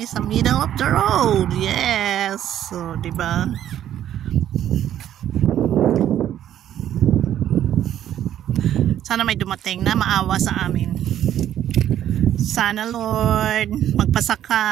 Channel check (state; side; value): quieter; left; 11.2 dB